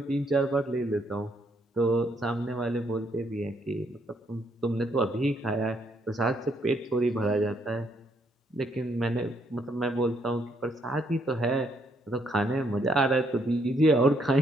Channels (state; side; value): normal; both; correlation 0.72